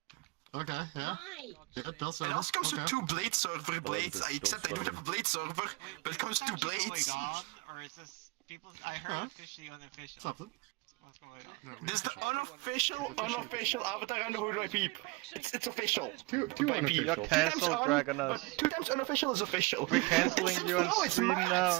Okay, yeah. Yeah, Dell It server. also comes with Okay. 2 blade server blades. I accept I don't have a blade server, but it comes with 2 blades. Or is this people? I heard officially unofficial. Something. What's going on? This is the unofficial Avatar and Who Do I Peep? It's official. Two By Peep. You're unofficial. cancelled, Dragonus. 2 times unofficial is official. We're cancelling you on No, it's stream not.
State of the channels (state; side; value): quieter; left; 24.7 dB